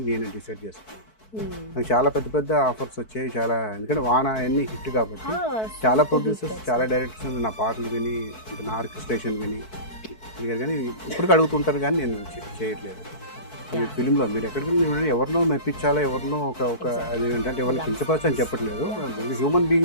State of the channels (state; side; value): late; right; 4.6 ms